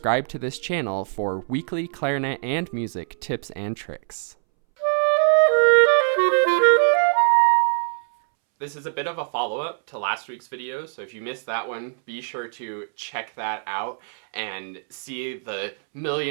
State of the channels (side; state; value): left; silent; 63 dB below the other